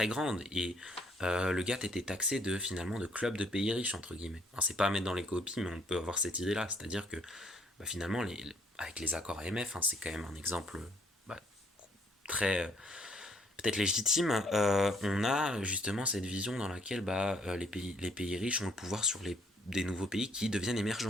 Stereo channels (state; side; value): normal; both; correlation 0.65